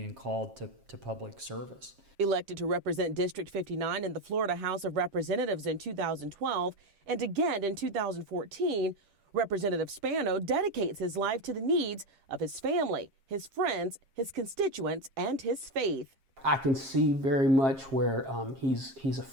called to public service. Elected to represent District 59 in the Florida House of Representatives in 2012 and again in 2014, Representative Spano dedicates his life to the needs of his family, his friends, his constituents, and his faith. I can see very much where he's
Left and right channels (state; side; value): late; left; 7.4 ms